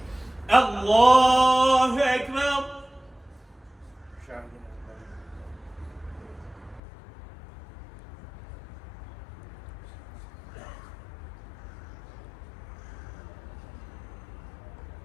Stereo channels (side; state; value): right; drops out; at 6.8 s